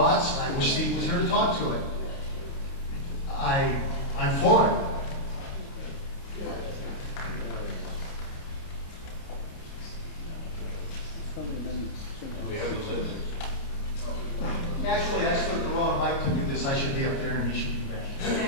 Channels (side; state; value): right; late; 29 ms